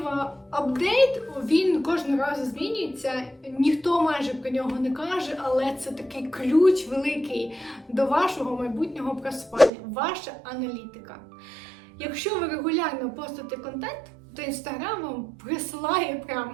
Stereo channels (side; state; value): left; drops out; at 9.7 s